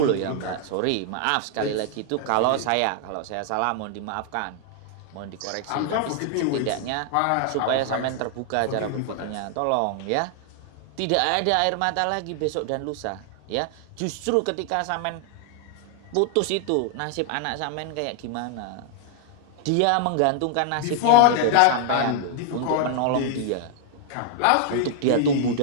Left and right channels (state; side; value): different; both; correlation 0.00